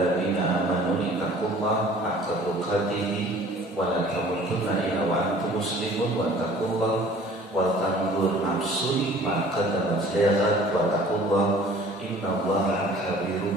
amanu ittaqullaha haqqa tuqatih wa la tamutunna illa wa antum muslimun wa taqullaha wal tanzur nafsun ma qaddamat lighad wa taqullaha innallaha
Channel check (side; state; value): both; normal; correlation 0.50